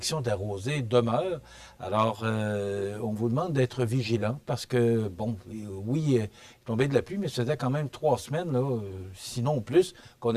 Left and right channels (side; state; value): both; identical; correlation 1.00